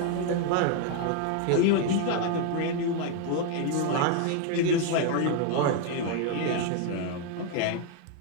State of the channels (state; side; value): different; both; correlation 0.01